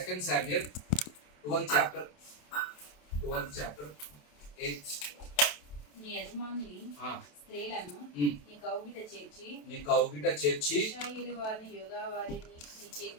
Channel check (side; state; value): right; late; 27 ms